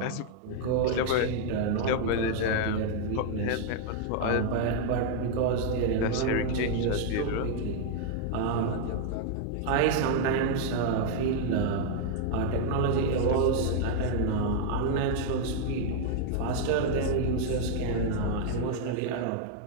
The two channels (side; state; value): both; different; correlation 0.00